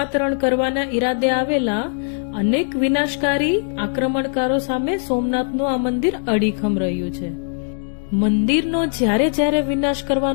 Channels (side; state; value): right; silent; 66 dB below the other